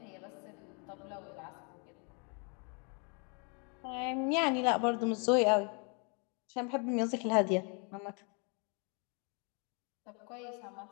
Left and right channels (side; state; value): right; quieter; 36.2 dB